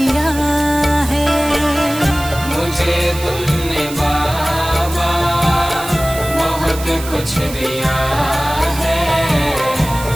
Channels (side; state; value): right; noise; hiss, 12 dB below the sound